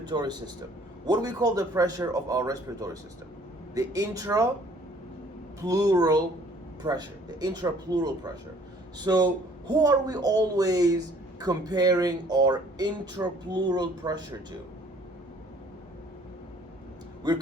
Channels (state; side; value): normal; both; correlation 0.57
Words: system, what do we call the pressure of our respiratory system? The intrapleural pressure. The intrapleural pressure. So who are we always comparing our intrapleural pressure to? We're